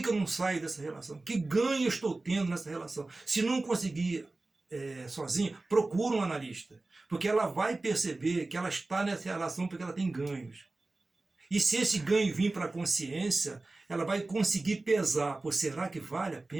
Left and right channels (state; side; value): quieter; left; 3.2 dB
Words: eu não saio dessa relação? Que ganho eu estou tendo nessa relação? Se não conseguir sozinho, procura um analista. Porque ela vai perceber que ela está nessa relação porque ela tem ganhos. E se esse ganho vir para a consciência, ela vai conseguir pesar. Pô, será que vale a